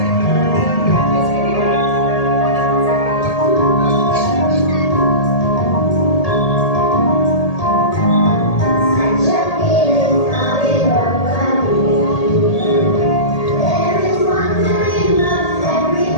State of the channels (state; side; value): late; right; 1.8 ms